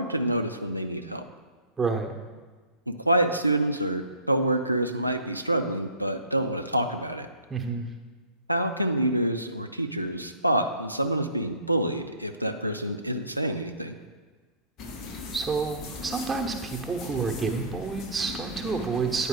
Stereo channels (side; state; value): both; inverted; correlation -0.43